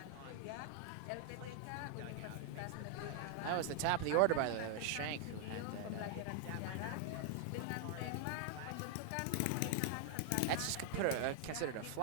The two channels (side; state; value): both; different; correlation 0.00